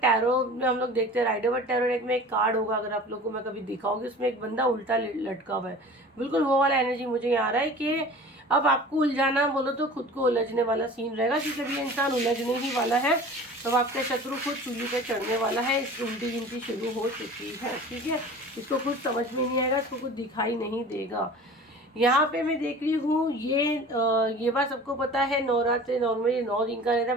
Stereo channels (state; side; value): normal; both; correlation 0.41